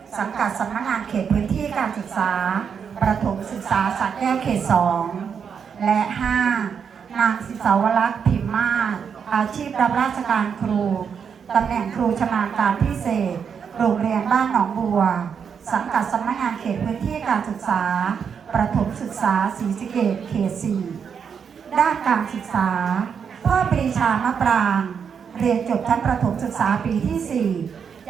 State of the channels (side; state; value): left; quieter; 6.9 dB